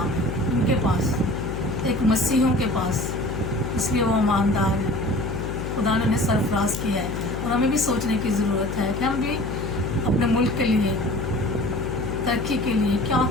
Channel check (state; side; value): noise; left; hum, 5 dB below the sound